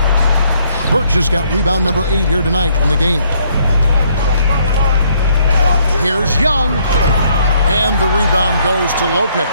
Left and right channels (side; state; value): both; inverted; correlation -0.68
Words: Birch has got rebound number 8 here tonight in the game. Here's Young. And the rebound goes to Lopez.